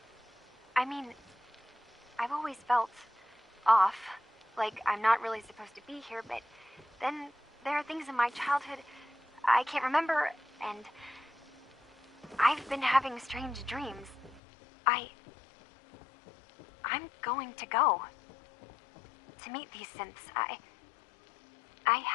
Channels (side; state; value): right; drops out; at 14.4 s